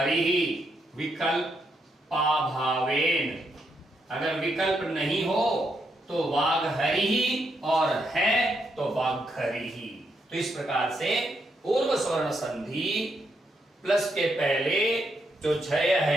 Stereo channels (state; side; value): normal; both; correlation 0.79